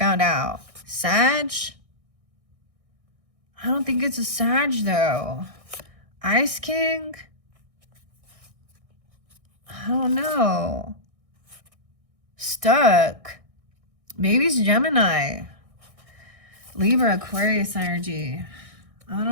out. Sag. I don't think it's a Sag though. Ice King. I don't know. Stuck. Maybe it's Gemini. Libra, Aquarius energy. I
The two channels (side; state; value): left; late; 1.6 ms